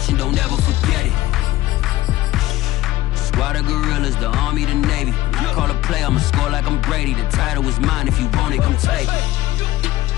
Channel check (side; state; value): right; quieter; 15.9 dB